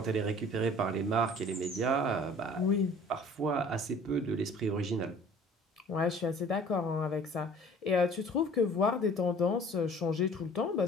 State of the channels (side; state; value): both; normal; correlation 0.49